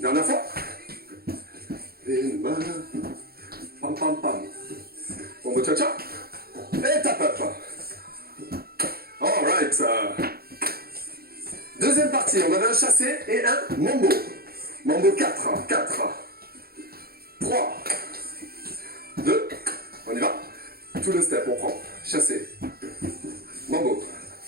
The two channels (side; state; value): left; late; 0.45 ms